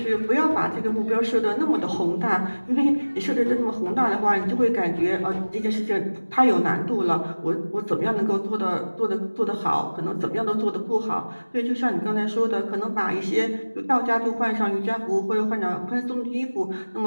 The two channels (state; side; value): inverted; both; correlation -1.00